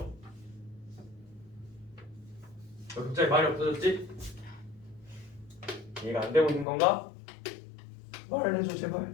너 갑자기 말이 없어졌지? 이해가 안 되고 있는 건가? 말을 해줘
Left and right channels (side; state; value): right; drops out; at 6.7 s